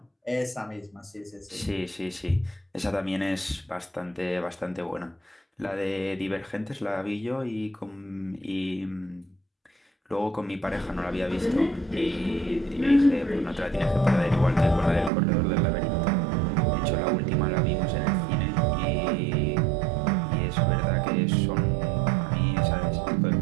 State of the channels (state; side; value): drops out; left; at 15.1 s